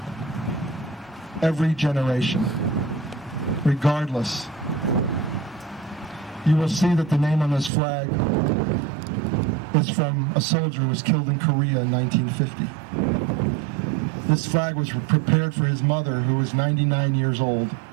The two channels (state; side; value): drops out; left; at 7.7 s